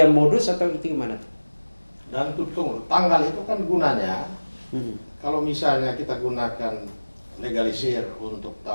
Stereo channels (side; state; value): both; inverted; correlation -1.00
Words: modus atau itu gimana tuh? Dan tunggu, tanggal itu kan gunanya kalau misalnya kita gunakan legalisir untuk